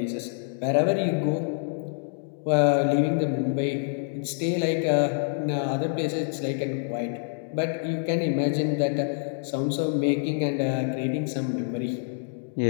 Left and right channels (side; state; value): right; silent; digital silence